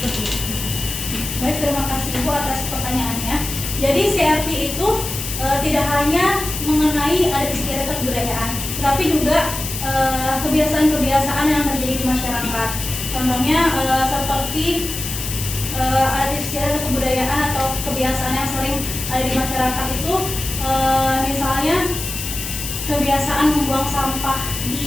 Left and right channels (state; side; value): noise; left; hiss, 6 dB below the sound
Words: itu. Baik, terima kasih Ibu atas pertanyaannya. Jadi CRT itu tidak hanya mengenai adat istiadat kebudayaan, tapi juga kebiasaan-kebiasaan yang terjadi di masyarakat. Contohnya seperti adat istiadat kebudayaan atau kebiasaan yang sering ada di masyarakat itu, misalnya kebiasaan membuang sampah